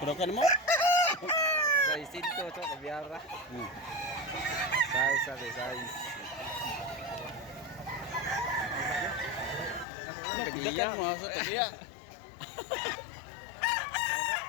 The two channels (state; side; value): drops out; right; at 9.9 s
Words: mo? Size ito, so, kabyara. Size, sabi, size. Tagiya. mo sa tagiya.